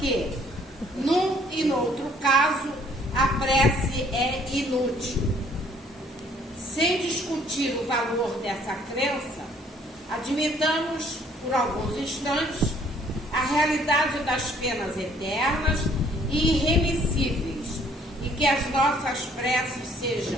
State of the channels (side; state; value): both; normal; correlation 0.61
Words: num e no outro caso, a prece é inútil. Sem discutir o valor dessa crença, admitamos, por alguns instantes, a realidade das penas eternas e irremissíveis, e que as nossas preces sejam